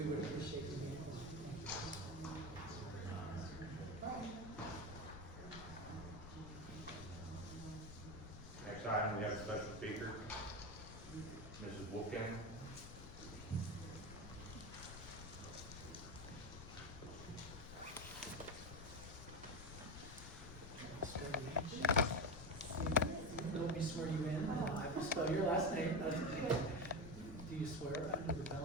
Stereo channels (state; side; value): noise; left; rumble, 11 dB below the sound